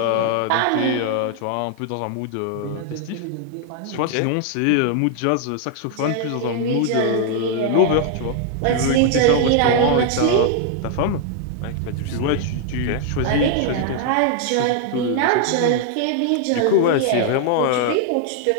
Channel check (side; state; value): both; different; correlation 0.00